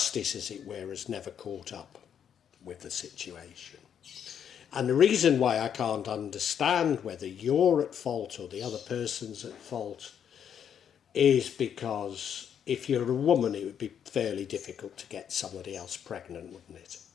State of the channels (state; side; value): quieter; right; 8.5 dB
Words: as it were, has never caught up with the situation. And the reason why I can't understand whether you're at fault or the other person's at fault is because if you're a woman, it would be fairly difficult to get somebody else pregnant, wouldn't it?